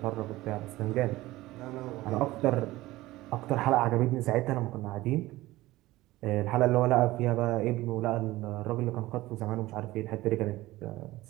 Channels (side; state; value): left; quieter; 17.9 dB